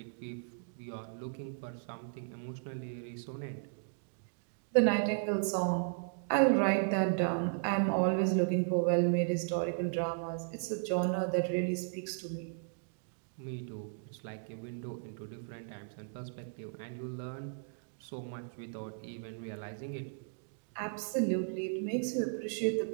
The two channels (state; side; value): silent; left; digital silence